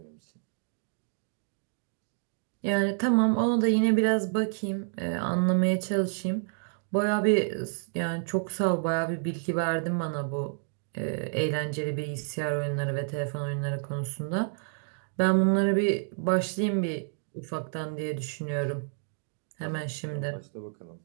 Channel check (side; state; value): left; silent; 58 dB below the other